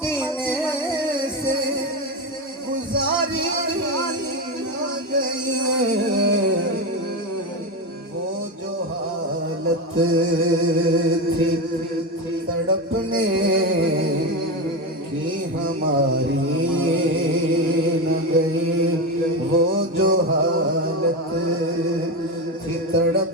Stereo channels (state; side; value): normal; both; correlation 0.17